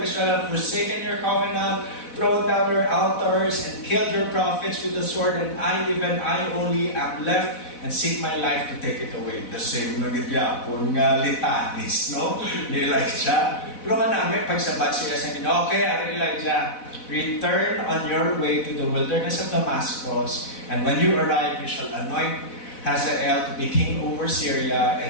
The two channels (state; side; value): late; right; 4.0 ms